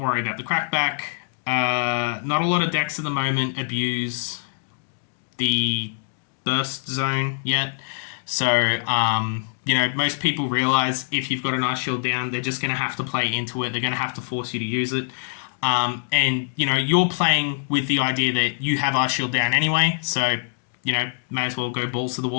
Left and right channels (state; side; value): silent; right; digital silence